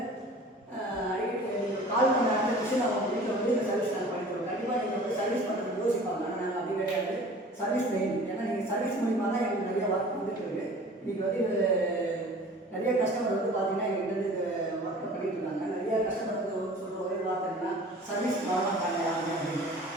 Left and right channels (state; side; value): normal; both; correlation 0.45